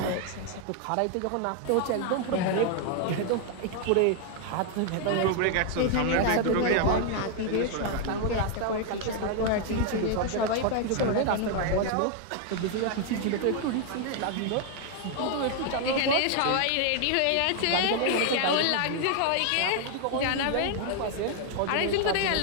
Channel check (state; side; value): different; both; correlation 0.00